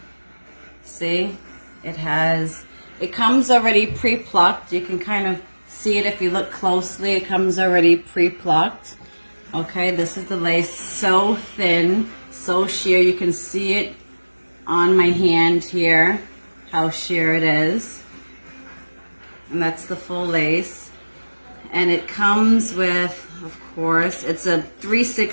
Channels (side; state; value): both; inverted; correlation -1.00